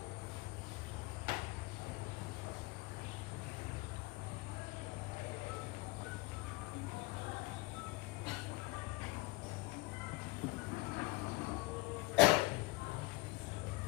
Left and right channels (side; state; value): right; quieter; 23.6 dB